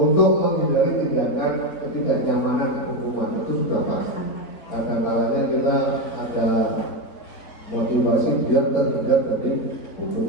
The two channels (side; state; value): right; late; 4.2 ms